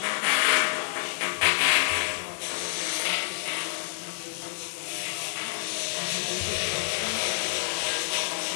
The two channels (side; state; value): right; silent; digital silence